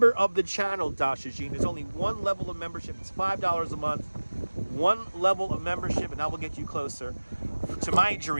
of the channel, Dasha Jean. There's only one level of membership. It's $5 a month. One level of membership, and that will get you closer to my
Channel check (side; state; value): both; inverted; correlation -1.00